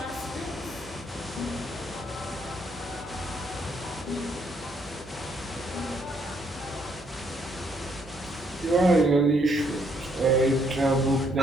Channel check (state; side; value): normal; both; correlation 0.71